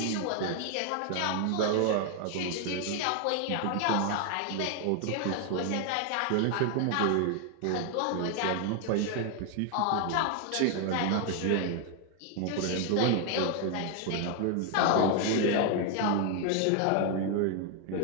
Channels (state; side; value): different; both; correlation 0.01